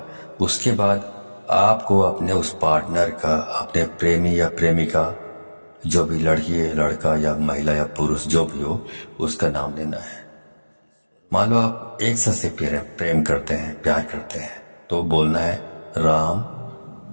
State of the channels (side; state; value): both; inverted; correlation -1.00